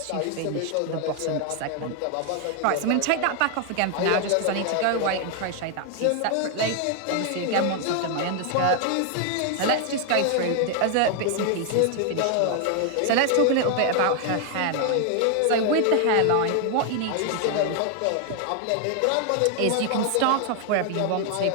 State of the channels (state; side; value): different; both; correlation 0.00